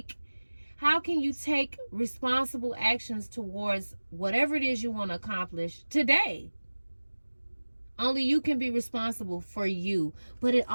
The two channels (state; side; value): inverted; both; correlation -1.00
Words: take responsible actions towards whatever it is you want to accomplish today? Only you can be responsible for you. But it